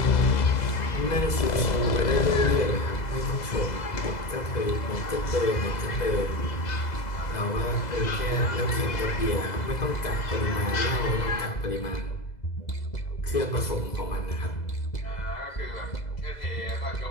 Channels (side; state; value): right; late; 2.0 ms